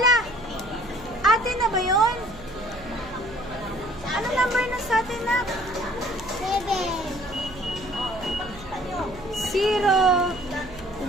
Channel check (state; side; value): noise; right; hum, 18 dB below the sound